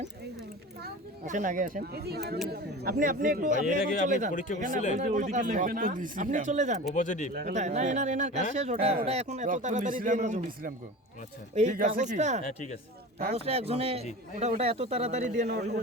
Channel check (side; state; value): both; normal; correlation 0.34